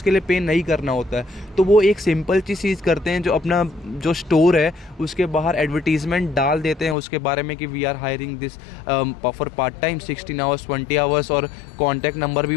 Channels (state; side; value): drops out; right; at 7.0 s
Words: लिए पे नहीं करना होता है। तो वो एक सिंपल चीज़ करते हैं, जो अपना जो स्टोर है उसके बाहर एडवर्टीजमेंट डाल देते हैं उसके बारे में कि we are hiring this for part time 16 hours 20 hours, और कॉन्टैक्ट नंबर भी